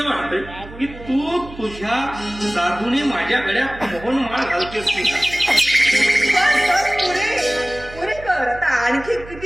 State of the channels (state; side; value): noise; right; hum, 16 dB below the sound